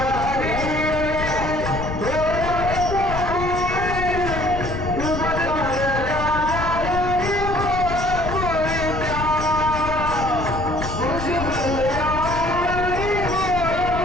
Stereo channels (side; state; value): left; noise; rumble, 6 dB below the sound